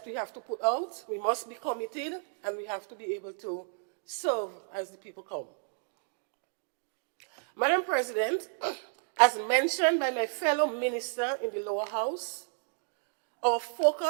we have to put out. We must be committed, and we have to be able to serve as the people come. Madam President, as mentioned by my fellow minister in the lower house, our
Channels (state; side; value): silent; left; digital silence